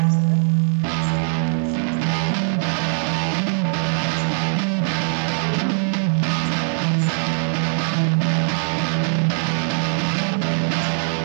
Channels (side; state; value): left; silent; digital silence